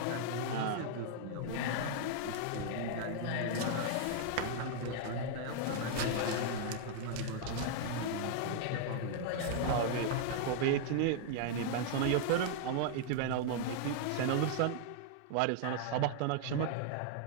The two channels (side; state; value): both; different; correlation -0.01